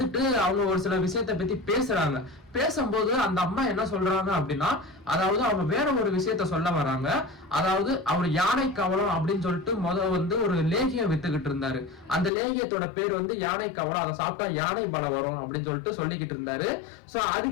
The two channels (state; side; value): drops out; right; at 12.3 s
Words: அவங்க ஒரு சில விஷயத்தை பத்தி பேசுறாங்க. பேசும்போது அந்த அம்மா என்ன சொல்றாங்க அப்படின்னா, அதாவது அவங்க வேற ஒரு விஷயத்த சொல்ல வராங்க. அதாவது அவர் யானை கவலம் அப்படின்னு சொல்லிட்டு வந்து ஒரு லேகியம் வித்துக்கிட்டு இருந்தாரு. அந்த லேகியத்தோட பேர் வந்து யானை கவலம், அதை சாப்பிட்டா யானை பலம் வரும் அப்படின்னு சொல்லிட்டு சொல்லிக்கிட்டு இருந்தாரு. சோ